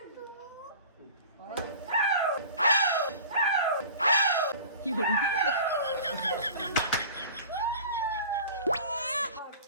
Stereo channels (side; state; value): both; inverted; correlation -0.41